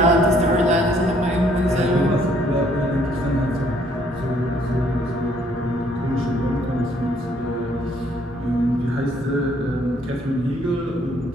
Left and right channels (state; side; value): normal; both; correlation 0.64